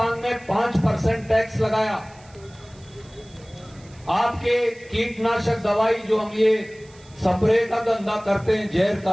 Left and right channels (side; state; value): right; noise; hiss, 26 dB below the sound